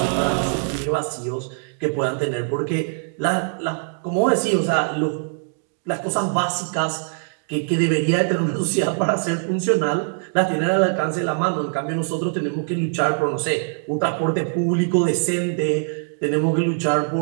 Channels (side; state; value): left; silent; digital silence